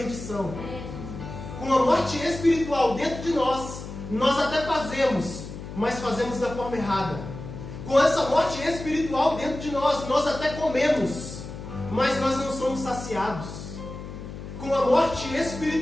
Com a morte espiritual dentro de nós, nós até fazemos, mas fazemos da forma errada. Com essa morte espiritual dentro de nós, nós até comemos, mas nós não somos saciados. Com a morte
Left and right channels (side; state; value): left; noise; hum, 11 dB below the sound